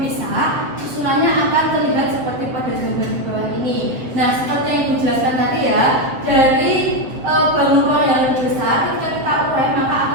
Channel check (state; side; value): late; left; 7.7 ms